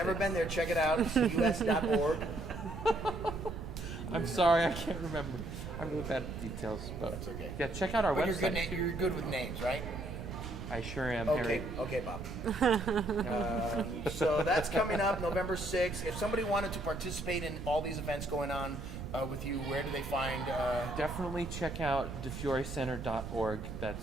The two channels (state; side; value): noise; right; rumble, 9 dB below the sound